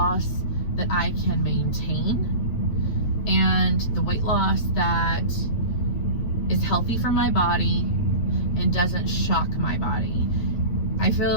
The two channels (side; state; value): right; late; 9.1 ms